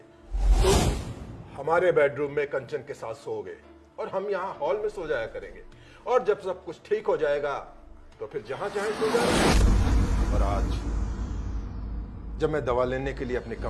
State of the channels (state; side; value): identical; both; correlation 1.00